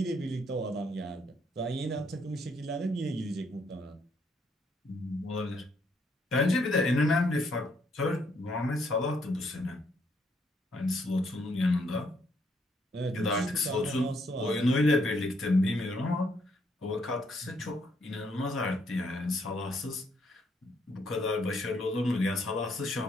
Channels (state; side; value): normal; both; correlation 0.71